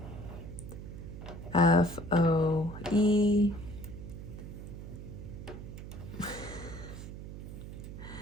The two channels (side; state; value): right; noise; hum, 10 dB below the sound